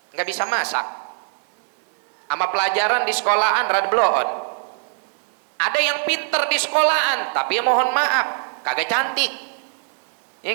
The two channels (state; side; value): silent; left; digital silence